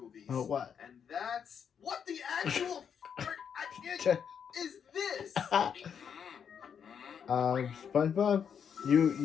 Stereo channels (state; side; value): quieter; right; 7.5 dB